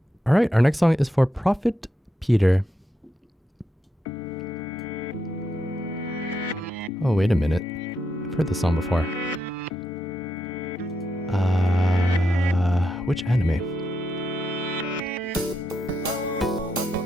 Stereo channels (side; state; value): both; normal; correlation 0.83